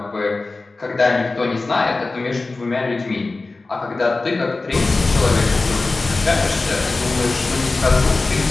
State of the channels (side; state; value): right; quieter; 3.5 dB